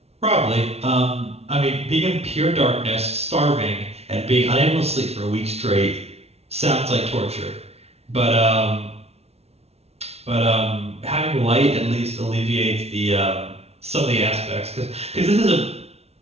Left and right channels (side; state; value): left; late; 0.30 ms